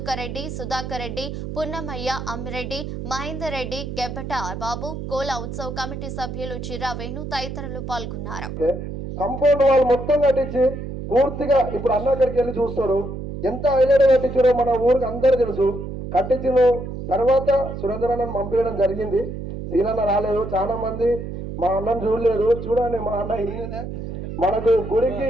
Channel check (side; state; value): right; noise; hum, 7 dB below the sound